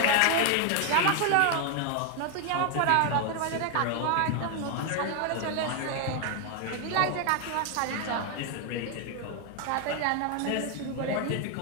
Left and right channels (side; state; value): both; different; correlation 0.01